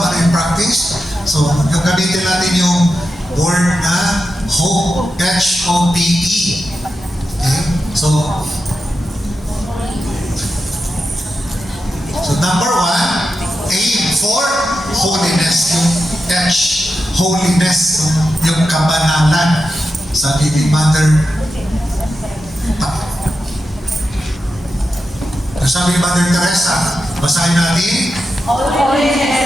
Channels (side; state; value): both; normal; correlation 0.90